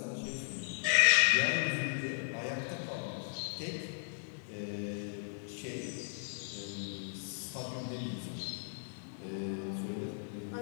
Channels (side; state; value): right; silent; 54 dB below the other